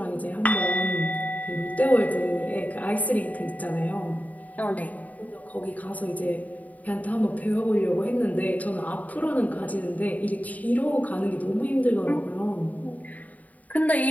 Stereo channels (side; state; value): right; late; 0.073 ms